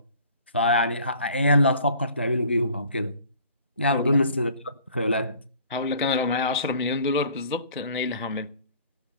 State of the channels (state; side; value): inverted; both; correlation -0.51